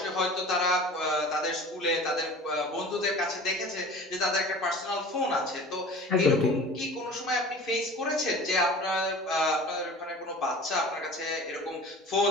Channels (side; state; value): both; normal; correlation 0.41